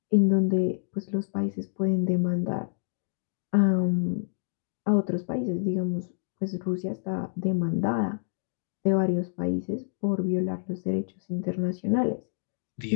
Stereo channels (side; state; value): right; silent; digital silence